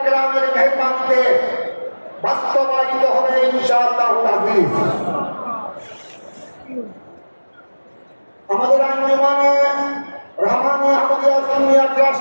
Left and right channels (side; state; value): both; inverted; correlation -1.00